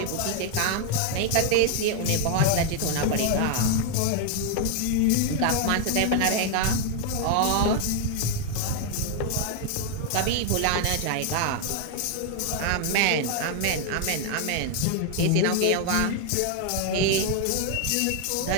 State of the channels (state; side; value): different; both; correlation 0.01